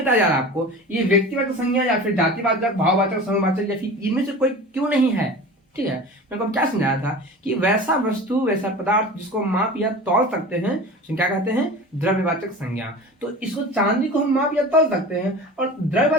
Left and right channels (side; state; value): both; normal; correlation 0.36